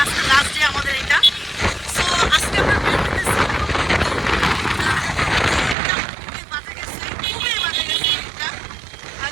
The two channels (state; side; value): drops out; left; at 5.8 s